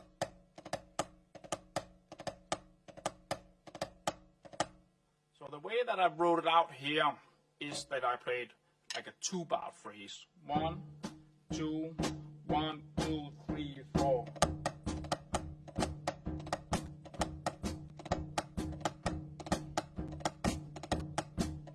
So the way that I wrote it out here is that I played like a 2-bar phrase. 1, 2, 1, 2, 3, 4.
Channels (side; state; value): both; identical; correlation 1.00